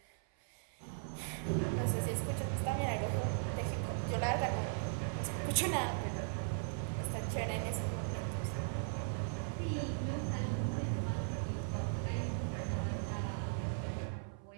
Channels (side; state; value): left; silent; 52 dB below the other